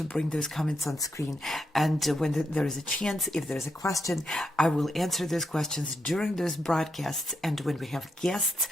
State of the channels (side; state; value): both; normal; correlation 0.83